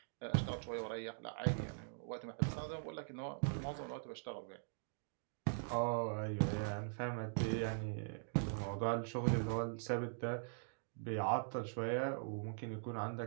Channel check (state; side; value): silent; left; digital silence